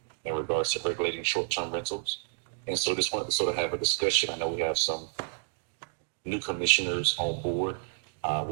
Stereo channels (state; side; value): silent; left; digital silence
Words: in regards to regulating short-term rentals. And so just wanted to sort of have a discussion. I know we have some new commissioners on board.